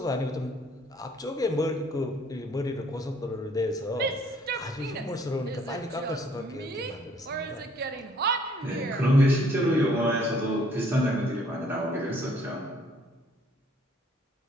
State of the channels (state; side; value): normal; both; correlation 0.62